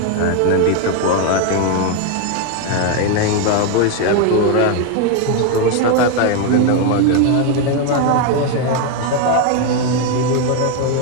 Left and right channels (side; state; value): both; different; correlation 0.01